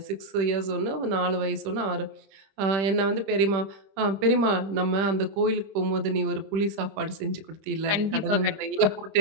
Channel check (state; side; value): late; left; 26 ms